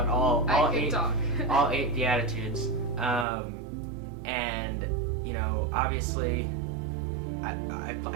all 8 Beatitudes. And obviously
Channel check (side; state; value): left; drops out; at 3.2 s